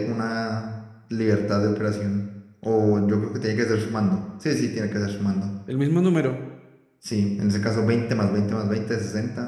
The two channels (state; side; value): identical; both; correlation 1.00